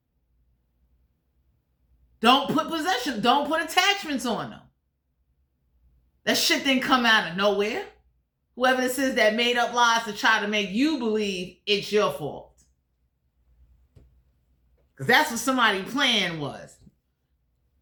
Don't put possession. Don't put attachments on them. That shit didn't come out of nowhere. Whoever this is that made up lies to try to make you believe it's your fault. Because that's what somebody's plan was.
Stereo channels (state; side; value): identical; both; correlation 1.00